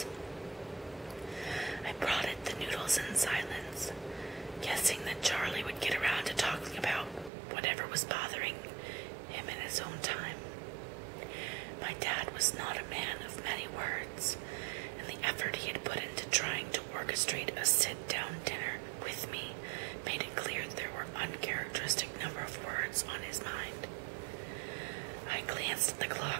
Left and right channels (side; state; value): left; drops out; at 7.3 s